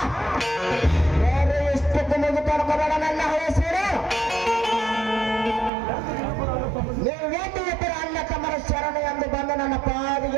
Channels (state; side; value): drops out; left; at 5.7 s